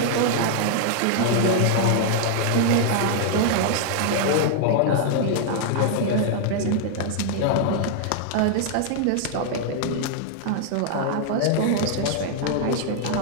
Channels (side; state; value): both; different; correlation 0.00